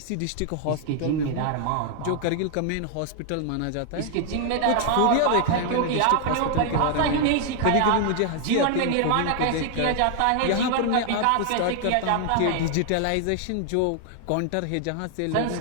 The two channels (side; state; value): both; different; correlation 0.00